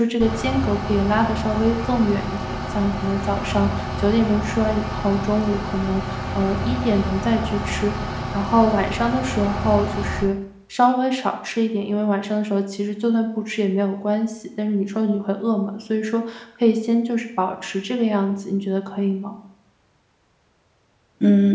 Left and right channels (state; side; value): identical; both; correlation 1.00